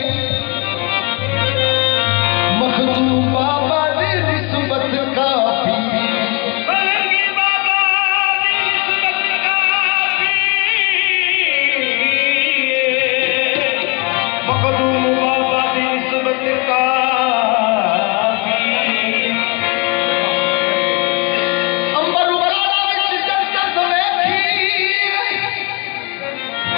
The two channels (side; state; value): right; quieter; 30.6 dB